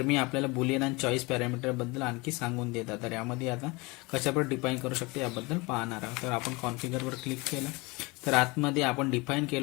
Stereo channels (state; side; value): quieter; right; 25.2 dB